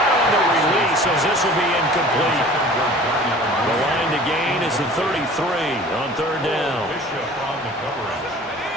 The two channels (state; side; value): normal; both; correlation 0.45